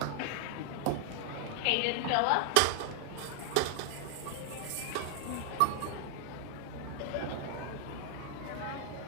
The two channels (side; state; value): both; different; correlation -0.01